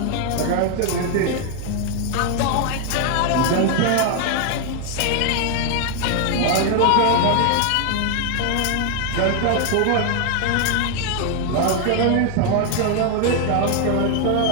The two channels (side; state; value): both; different; correlation 0.00